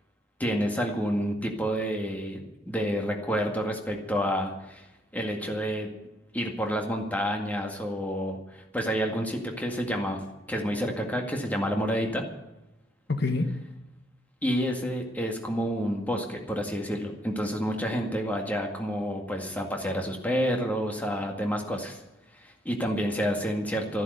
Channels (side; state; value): both; normal; correlation 0.71